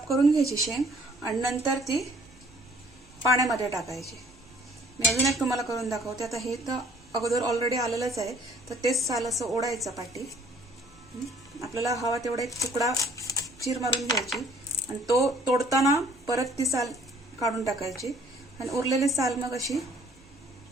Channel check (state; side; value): normal; both; correlation 0.58